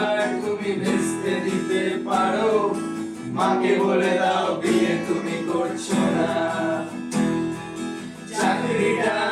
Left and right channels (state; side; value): identical; both; correlation 1.00